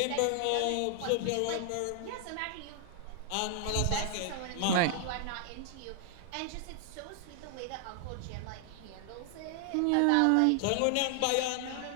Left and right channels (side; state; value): both; different; correlation 0.00